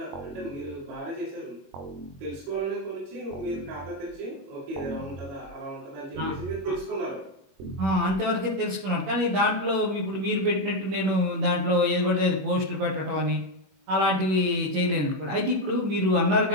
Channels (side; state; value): left; late; 21 ms